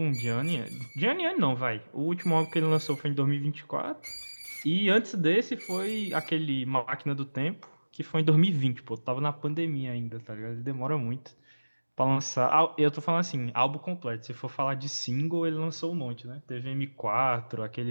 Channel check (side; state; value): both; inverted; correlation -1.00